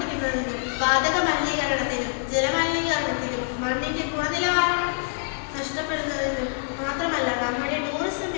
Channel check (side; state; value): right; silent; 61 dB below the other